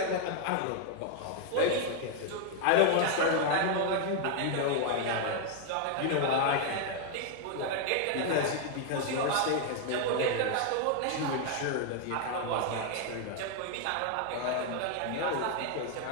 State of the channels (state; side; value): different; both; correlation 0.00